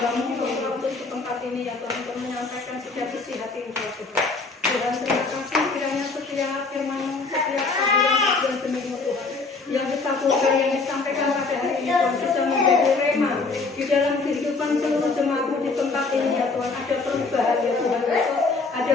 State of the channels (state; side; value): quieter; right; 4.0 dB